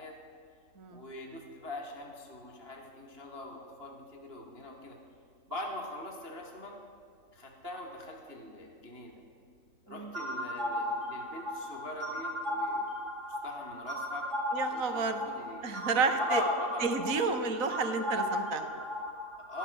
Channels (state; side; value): late; left; 3.9 ms